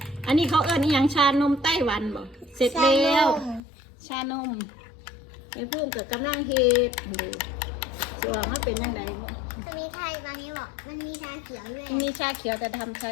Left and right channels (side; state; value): right; drops out; at 3.6 s